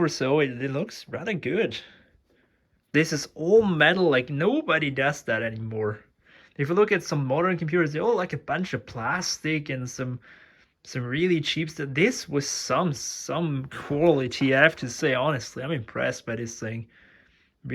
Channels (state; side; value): identical; both; correlation 1.00